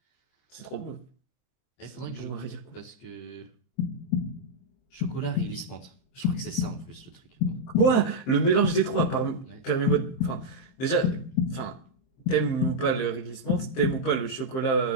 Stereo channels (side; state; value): right; late; 23 ms